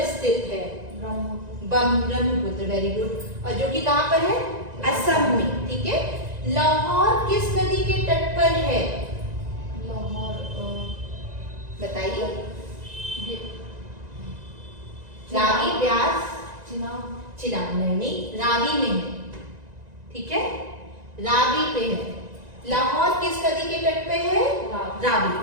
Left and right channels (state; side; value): late; left; 1.9 ms